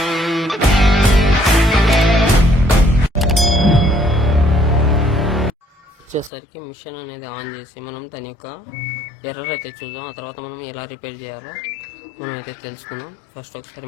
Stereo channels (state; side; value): drops out; right; at 6.3 s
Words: వచ్చేసరికి మిషన్ అనేది ఆన్ చేసి మనం దాని యొక్క ఎర్రర్ అయితే చూద్దాం. ఆ తర్వాత మనం ఎలా రిపేర్ చేయాలో మనం అయితే తెలుసుకుందాం. ఫస్ట్